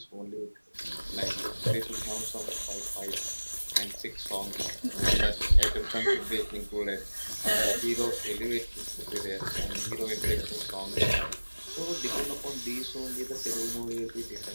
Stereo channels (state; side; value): inverted; both; correlation -1.00